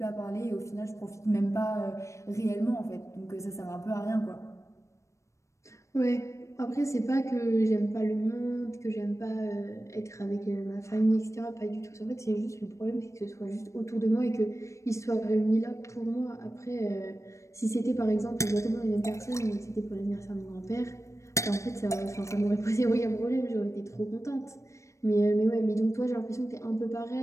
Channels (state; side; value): late; right; 0.15 ms